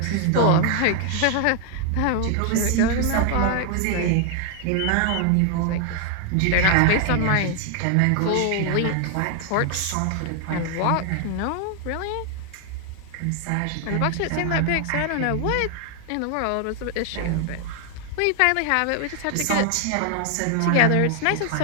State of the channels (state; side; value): different; both; correlation 0.00